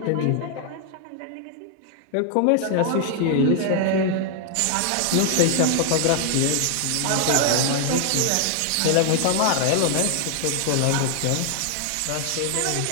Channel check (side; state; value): both; different; correlation 0.00